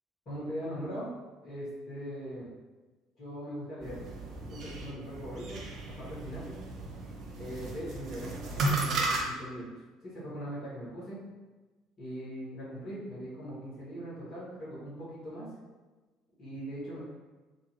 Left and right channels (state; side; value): normal; both; correlation 0.57